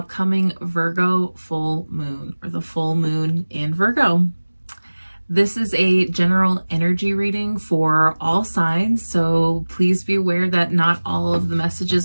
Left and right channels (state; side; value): inverted; both; correlation -1.00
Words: Virgo full moon, or the full moon in Virgo. This is a general energy reading for all signs, so please be aware that not all of the